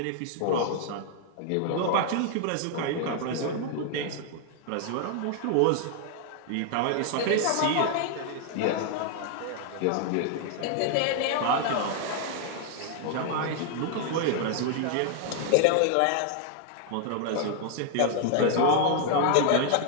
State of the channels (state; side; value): different; both; correlation 0.00